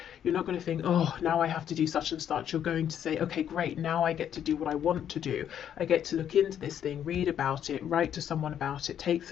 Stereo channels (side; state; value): right; quieter; 9.6 dB